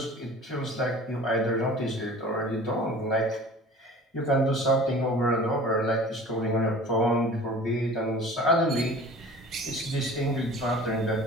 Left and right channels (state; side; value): normal; both; correlation 0.43